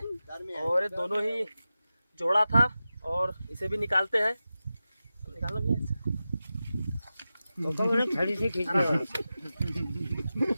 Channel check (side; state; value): both; inverted; correlation -0.93